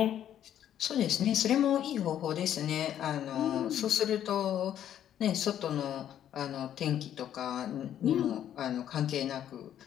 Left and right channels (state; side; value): quieter; right; 10.6 dB